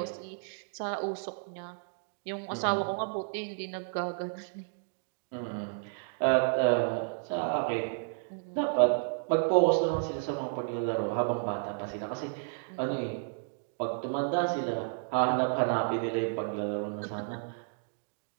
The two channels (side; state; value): left; silent; digital silence